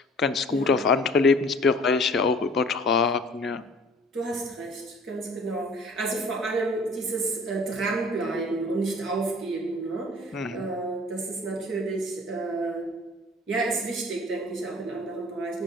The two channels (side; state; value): both; normal; correlation 0.50